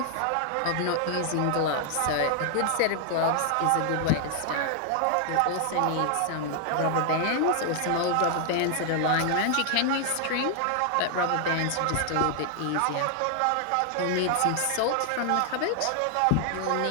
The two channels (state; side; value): different; both; correlation 0.00